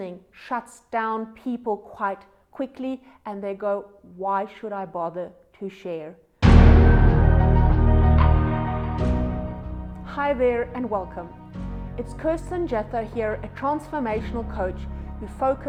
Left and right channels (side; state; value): both; identical; correlation 1.00